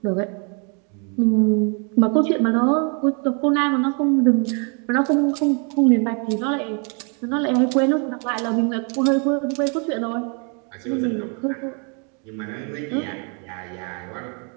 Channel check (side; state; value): left; quieter; 37.1 dB